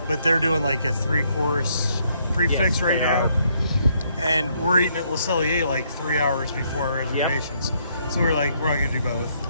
but they're doing like a 3-course prefix right now. And we're eating at Le Cellier like 3 hours before our reservations. Yep. So we're like, we're not gonna do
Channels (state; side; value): inverted; both; correlation -0.71